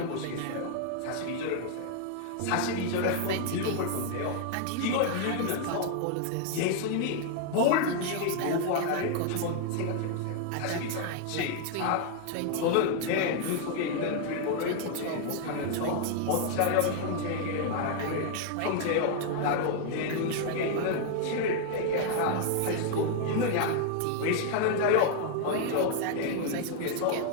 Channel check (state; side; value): different; both; correlation 0.00